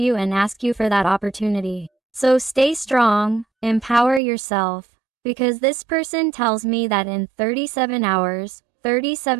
and ask you for that opportunity. So stay strong, empower yourself, because this person tells me that in 37 hours,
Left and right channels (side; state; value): left; drops out; at 4.2 s